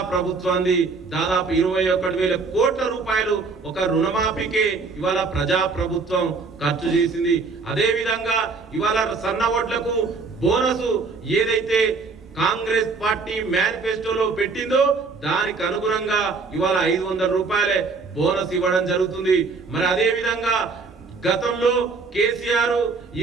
ప్రభుత్వాన్ని దాదాపు 21,000 కోట్ల రూపాయలు ఒక రుణమాఫీకే ఇవాళ ప్రజా ప్రభుత్వం ఖర్చు చేసింది। అదే విధంగా ఇవాళ సన్న ఓట్లకు బోనస్ ఏదైతే కాంగ్రెస్ పార్టీ మేనిఫెస్టోలో పెట్టిందో దానికి అనుగుణంగా ఇవాళ 500 రూపాయలే బోనస్ ఇవ్వడం జరుగుతుంది। మరి అదే విధంగా గతంలో కేసీఆర్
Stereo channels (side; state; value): left; quieter; 4.3 dB